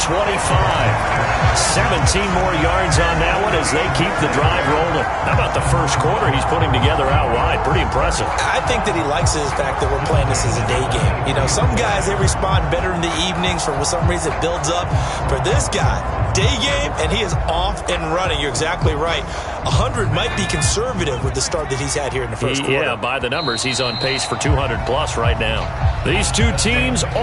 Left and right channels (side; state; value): both; identical; correlation 1.00